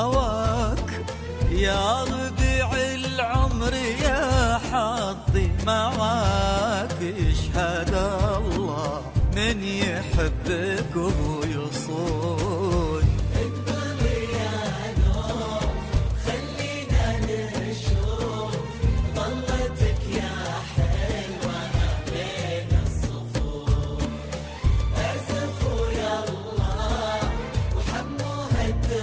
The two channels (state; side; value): identical; both; correlation 1.00